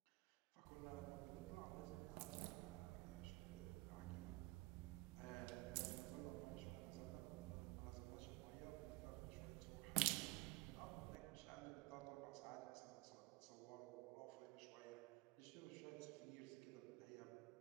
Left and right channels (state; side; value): quieter; left; 23.5 dB